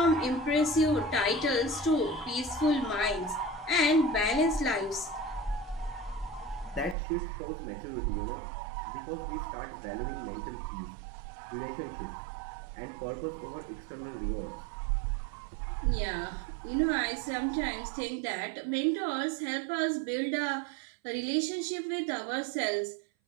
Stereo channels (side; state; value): left; drops out; at 7.0 s